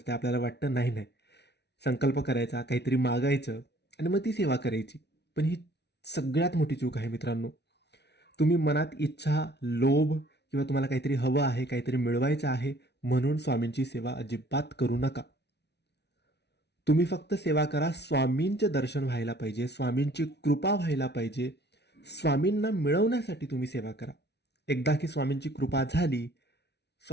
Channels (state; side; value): late; right; 0.50 ms